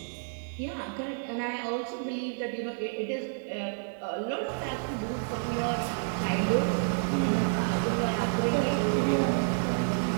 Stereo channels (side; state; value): left; silent; digital silence